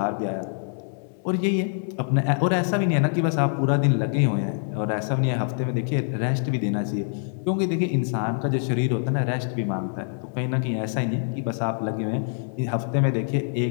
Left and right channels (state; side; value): silent; right; digital silence